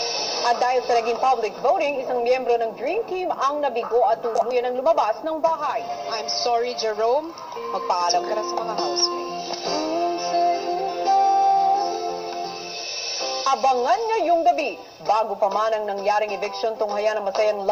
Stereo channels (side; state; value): both; identical; correlation 1.00